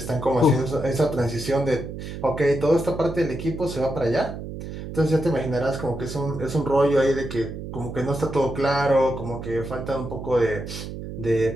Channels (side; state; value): right; noise; hum, 9 dB below the sound